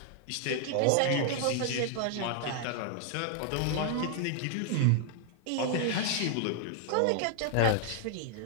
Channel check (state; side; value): different; both; correlation 0.00